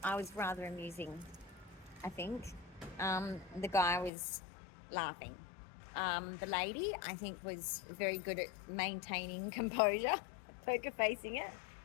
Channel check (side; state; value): right; drops out; at 4.1 s